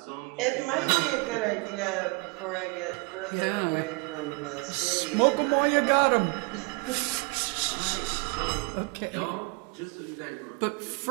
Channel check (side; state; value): left; quieter; 30.0 dB